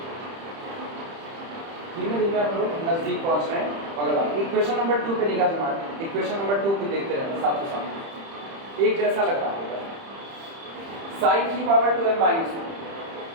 धीमे धीमे हम लोग नजदीक पहुंच रहे हैं। अगला इक्वेशन नंबर 2 पे निगाह जमाएं। इक्वेशन नंबर 2 को देखते रहना साथ ही साथ, एक जैसा लग रहा होगा। साइन की पावर 2m माइनस 1,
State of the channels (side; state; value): left; late; 30 ms